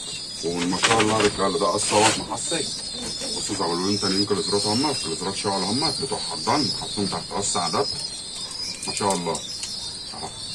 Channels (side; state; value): both; identical; correlation 1.00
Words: وما شاء الله يا رجاله ده قص اهوت محصي. بصوا زغلولين تانيين كليزرات همت، كليزرات شغل همت بتوع حضان حاطين تحت قص عدد ما شاء الله اهو.